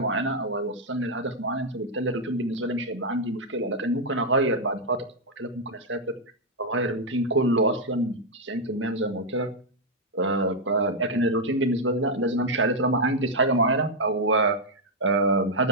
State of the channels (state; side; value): normal; both; correlation -0.02